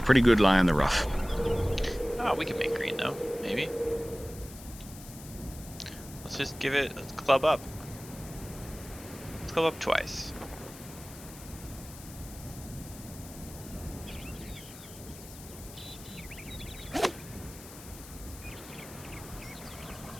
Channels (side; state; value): left; noise; hiss, 16 dB below the sound